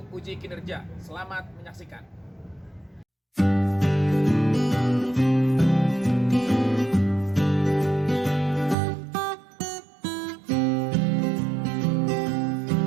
uji kinerja. Selamat menyaksikan.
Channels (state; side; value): drops out; left; at 8.8 s